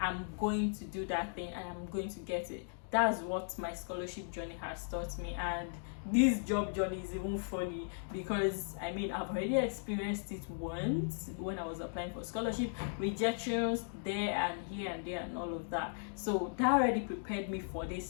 going to do that thing and I'm going to get it. That's what my scholarship journey has taught me. And this job journey is even funny because I've already experienced it once when I was applying for scholarship, rejections there and here and there and all of that. So that already prepared me for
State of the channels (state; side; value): silent; right; digital silence